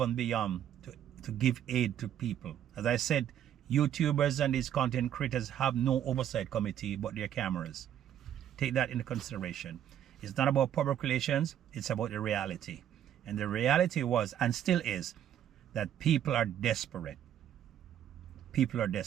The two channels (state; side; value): quieter; left; 10.5 dB